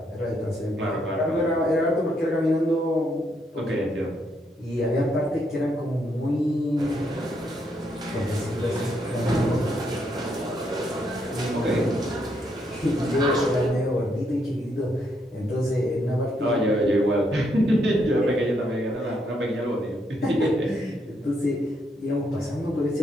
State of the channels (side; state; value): both; normal; correlation 0.75